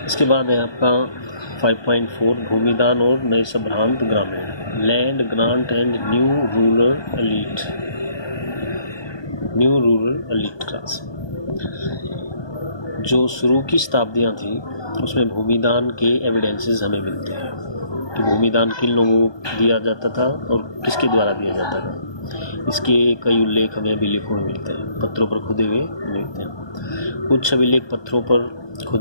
इसके बाद है आपका 5.4 भूमिदान और नए संभ्रांत ग्रामीण, land grant and new rural elite class. जो शुरू की शताब्दियाँ थी उसमें भूमिदान के एविडेंसेस हमें मिलते हैं कि भूमिदान किन लोगों को दिया जाता था और किसके द्वारा दिया जाता था। इसके कई उल्लेख हमें अभिलेखों में मिलते हैं, पत्थरों पर खुदे हुए मिलते हैं। कुछ अभिलेख पत्थरों पर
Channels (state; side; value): late; right; 1.2 ms